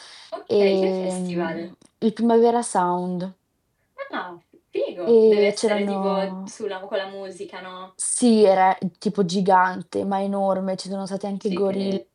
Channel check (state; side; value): identical; both; correlation 1.00